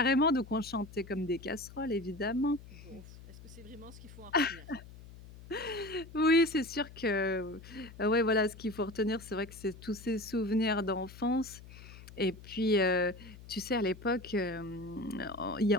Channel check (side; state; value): left; noise; hum, 17 dB below the sound